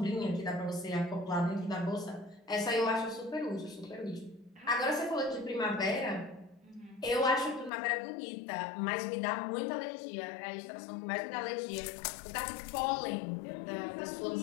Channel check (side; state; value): right; drops out; at 7.7 s